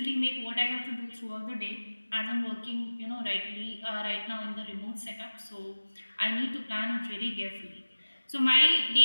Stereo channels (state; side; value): inverted; both; correlation -1.00